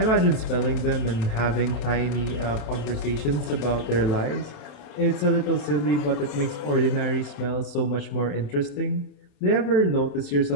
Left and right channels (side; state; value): right; late; 27 ms